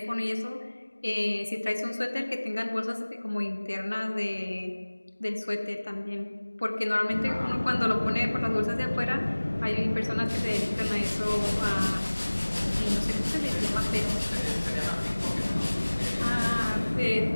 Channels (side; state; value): both; inverted; correlation -1.00